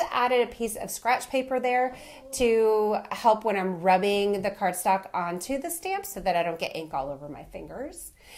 added a piece of scratch paper there to help when I'm rubbing the cardstock onto the stamp so that I don't get ink all over my fingers.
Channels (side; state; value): both; identical; correlation 1.00